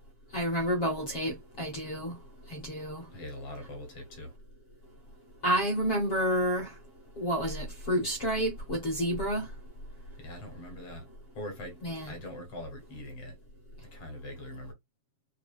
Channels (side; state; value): right; late; 7.3 ms